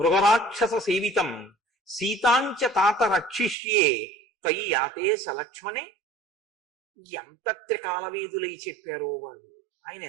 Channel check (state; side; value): drops out; left; at 3.6 s